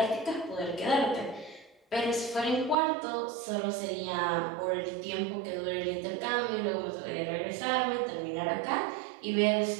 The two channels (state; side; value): drops out; left; at 2.8 s